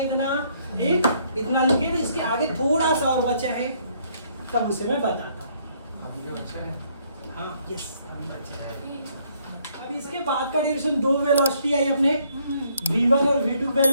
इतना? ठीक, इतना लिखे। तो इसके आगे थोड़ा सा और बचा है, तब उसे मैं बताता हूँ। अभी जो अच्छा है हाँ यस, अब इसके बाद का डिरेक्शन दो वेलोसिटी आई अपने v1 और v2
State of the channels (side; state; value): both; inverted; correlation -0.67